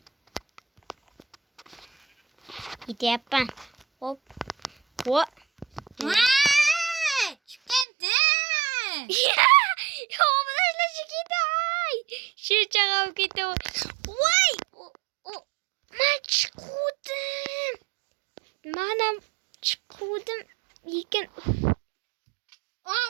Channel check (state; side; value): drops out; left; at 7.9 s